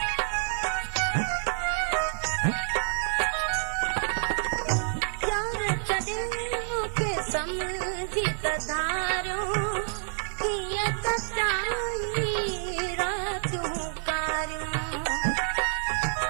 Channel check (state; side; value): silent; left; digital silence